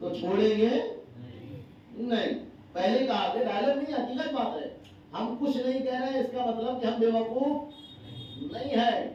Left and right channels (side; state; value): both; identical; correlation 1.00